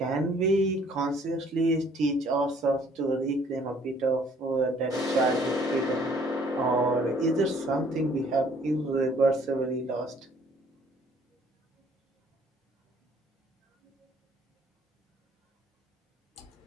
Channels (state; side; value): normal; both; correlation 0.59